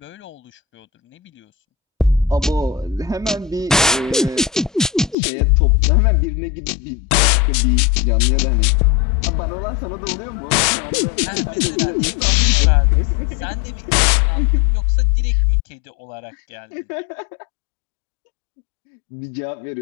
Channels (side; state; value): right; drops out; at 5.2 s